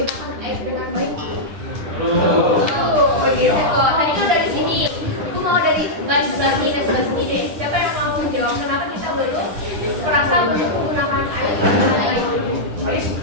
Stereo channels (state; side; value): late; left; 9.9 ms